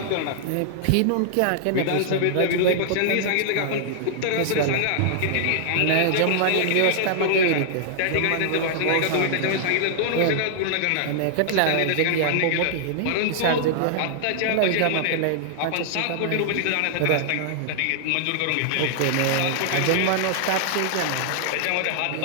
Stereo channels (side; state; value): both; different; correlation -0.01